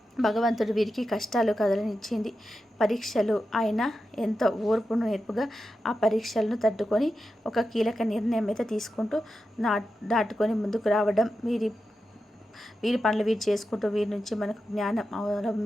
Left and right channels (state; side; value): normal; both; correlation 0.90